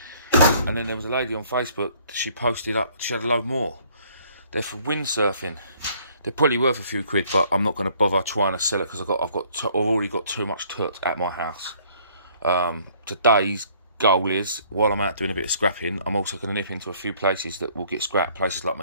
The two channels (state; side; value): inverted; both; correlation -0.60